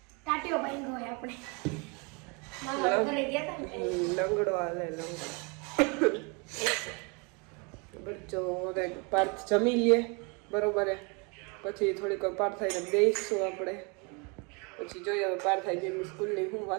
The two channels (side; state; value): left; quieter; 31.7 dB